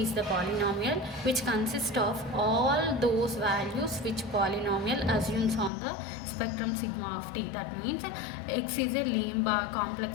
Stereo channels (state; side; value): drops out; right; at 5.7 s